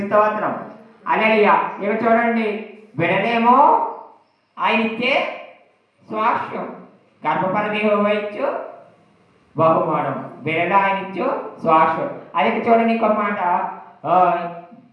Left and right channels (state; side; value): identical; both; correlation 1.00